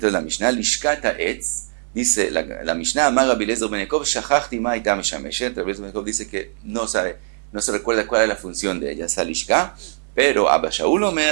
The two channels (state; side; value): silent; left; 65 dB below the other